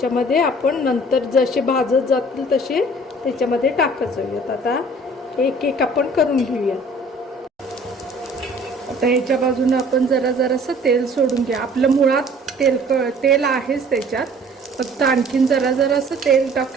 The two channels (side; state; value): both; normal; correlation 0.51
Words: आपण नंतर जसे भाजत जातील तसे त्याच्यामध्ये टाकत जाऊयात. आता एक एक आपण करून घेऊया. आता ह्याच्या बाजूने आपण जरासं तेल सोडून घ्या. आपलं मुळात तेल आहेच त्याच्यात, फक्त आणखीन जरासं तेल